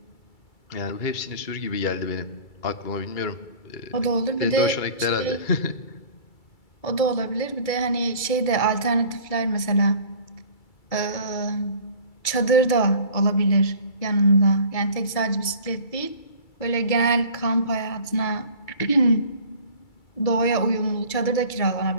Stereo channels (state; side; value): late; right; 2.3 ms